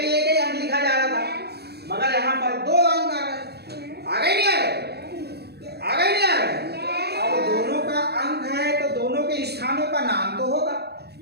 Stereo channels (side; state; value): left; late; 0.47 ms